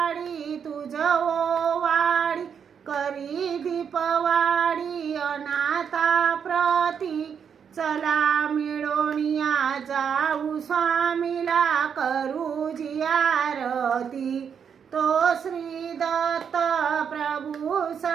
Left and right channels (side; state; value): left; quieter; 7.3 dB